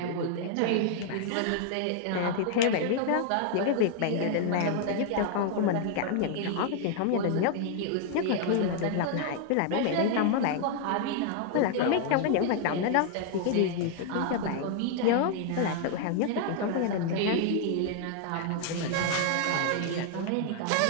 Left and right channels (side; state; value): both; different; correlation 0.00